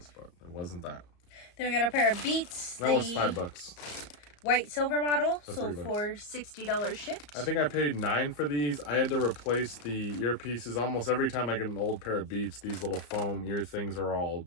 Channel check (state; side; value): late; right; 34 ms